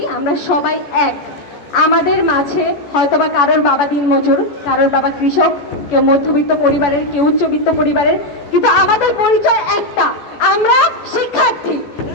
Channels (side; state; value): right; late; 14 ms